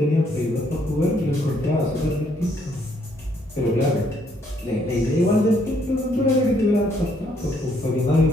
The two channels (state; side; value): normal; both; correlation 0.69